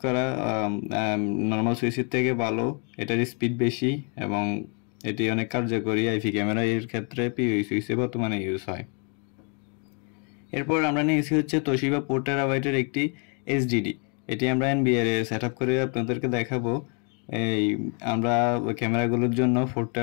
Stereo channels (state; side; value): quieter; right; 38.4 dB